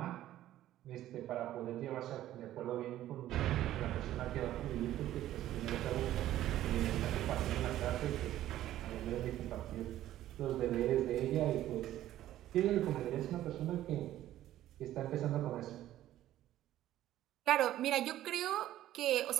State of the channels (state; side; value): quieter; left; 13.4 dB